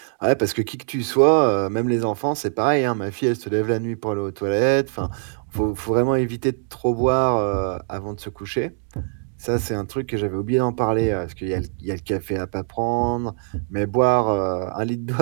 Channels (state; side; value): silent; left; digital silence